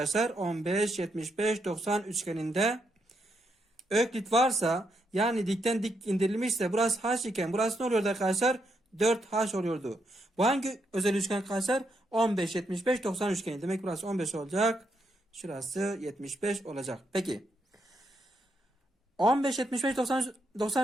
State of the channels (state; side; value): normal; both; correlation 0.79